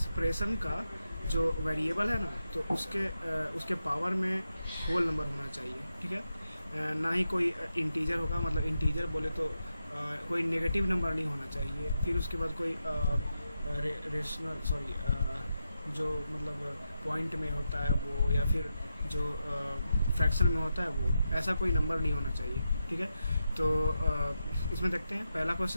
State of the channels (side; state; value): both; inverted; correlation -0.87